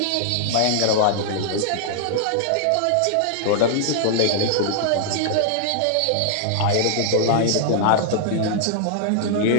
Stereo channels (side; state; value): both; different; correlation -0.01